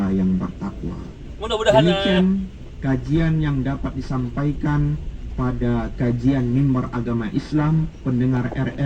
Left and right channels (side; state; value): both; identical; correlation 1.00